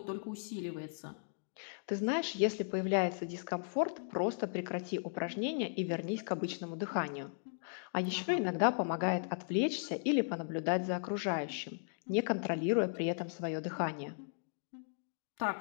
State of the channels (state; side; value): silent; right; digital silence